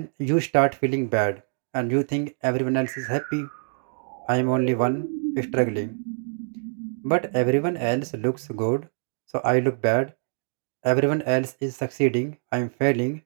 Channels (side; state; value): left; silent; digital silence